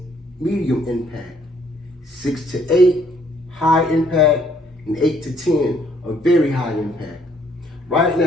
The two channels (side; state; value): both; normal; correlation 0.65